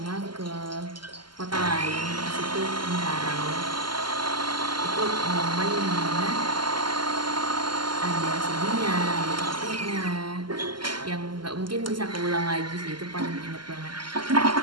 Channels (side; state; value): left; late; 0.72 ms